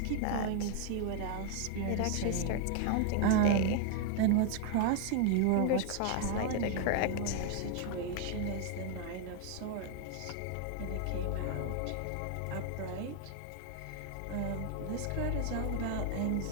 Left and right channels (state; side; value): different; both; correlation 0.00